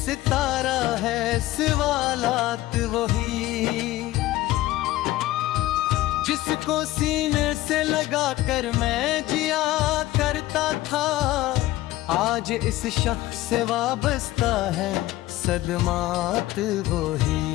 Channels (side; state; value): right; quieter; 16.3 dB